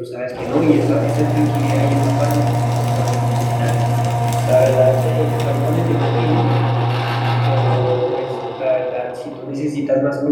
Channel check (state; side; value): identical; both; correlation 1.00